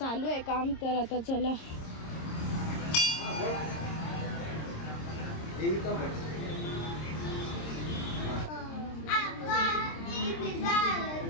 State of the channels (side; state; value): right; late; 26 ms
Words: आहे काम. तर आता चला